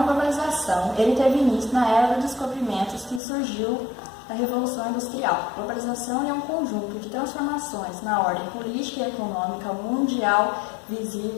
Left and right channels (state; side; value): drops out; right; at 3.2 s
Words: globalização, ele teve início na era dos descobrimentos que surgiu na Revolução Industrial. Globalização é um conjunto de transformações na ordem política e econômica mundial